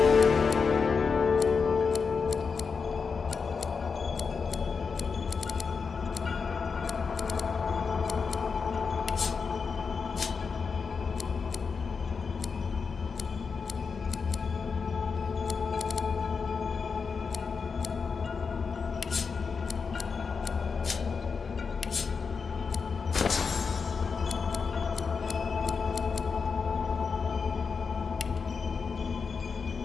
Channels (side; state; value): right; quieter; 5.3 dB